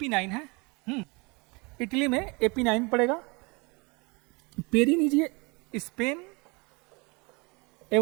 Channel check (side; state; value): left; quieter; 28.4 dB